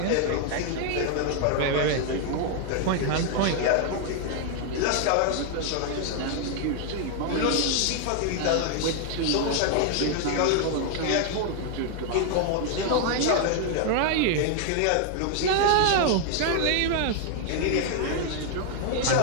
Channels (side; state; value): both; different; correlation 0.00